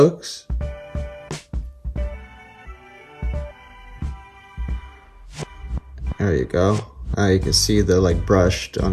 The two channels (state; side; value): identical; both; correlation 1.00